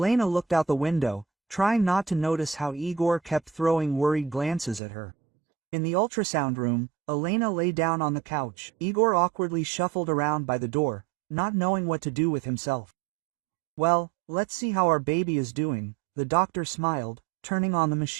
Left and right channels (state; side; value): drops out; left; at 4.8 s